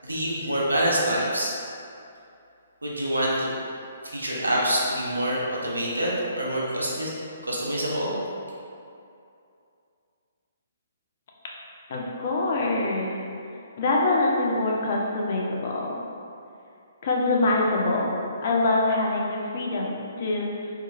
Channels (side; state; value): both; inverted; correlation -0.64